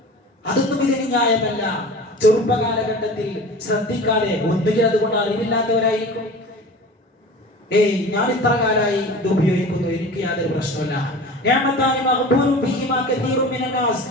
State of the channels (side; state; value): both; normal; correlation 0.37